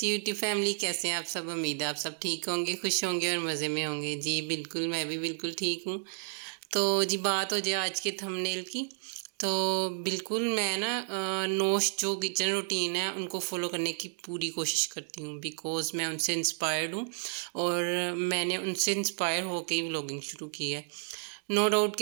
यूट्यूब फैमिली, कैसे हैं आप सब। उम्मीद है आप सब ठीक होंगे, खुश होंगे और मज़े में होंगे। जी बिल्कुल, मैं भी बिल्कुल ठीक हूँ। तो जी बात हो जाए आज के थंबनेल की, तो बिल्कुल मैं ना नोश जो किचन रूटीन है उनको फॉलो करने की पूरी कोशिश करती हूँ, बिकॉज़ मैं उनसे इंस्पायर्ड हूँ और मैंने उनसे इंस्पायर होकर ही व्लॉगिंग शुरू की है। नो डाउट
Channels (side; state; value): left; silent; digital silence